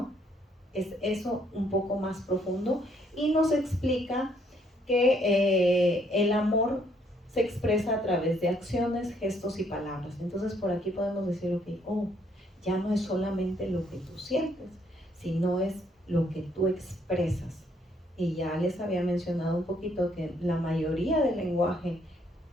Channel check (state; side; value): normal; both; correlation 0.68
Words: Es eso un poco más profundo, y nos explica que el amor se expresa a través de acciones, gestos y palabras. Entonces por aquí podemos decir, ya no es solamente lo que tú sientes, sino es lo que tú expresas. Y ya les había mencionado un poquito que la mayoría del lenguaje